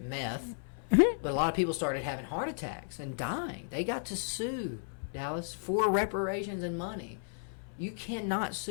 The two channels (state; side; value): silent; right; 55 dB below the other